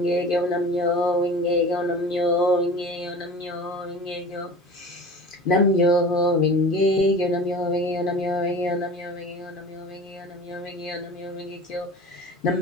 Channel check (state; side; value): normal; both; correlation 0.38